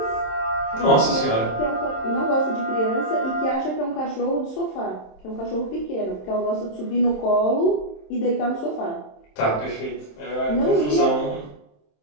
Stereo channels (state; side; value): late; right; 27 ms